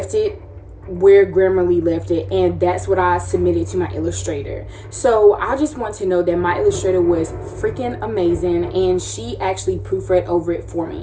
it where Grammarly left it, and that's what I submitted to my illustrator. So I just want to know that my illustrator was freaking amazing, and she actually proofread over it for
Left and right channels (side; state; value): both; identical; correlation 1.00